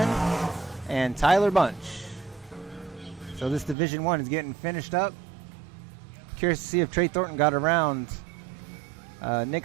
and Tyler Bunch. So this Division 1 is getting finished up. Curious to see if Trey Thornton got around Nick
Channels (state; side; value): drops out; left; at 3.8 s